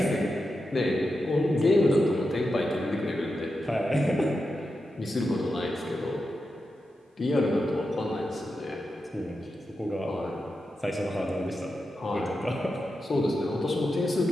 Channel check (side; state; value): both; normal; correlation 0.89